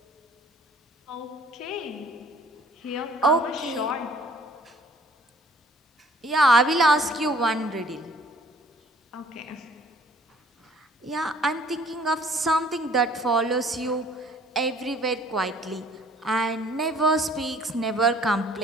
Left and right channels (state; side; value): normal; both; correlation 0.55